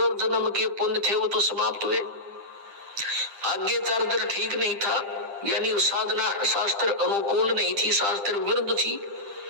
जन्म के पुण्य थे वो तो समाप्त हुए, आगे चार्जर ठीक नहीं था, यानी साधना शास्त्र अनुकूल नहीं थी, शास्त्र विरुद्ध थी,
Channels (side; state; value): left; late; 10 ms